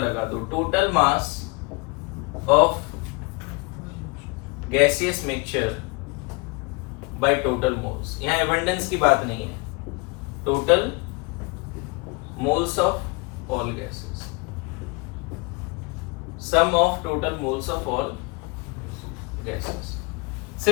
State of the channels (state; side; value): quieter; right; 28.7 dB